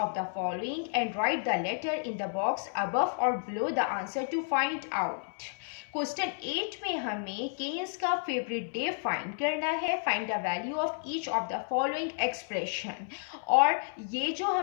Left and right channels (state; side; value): silent; right; 57 dB below the other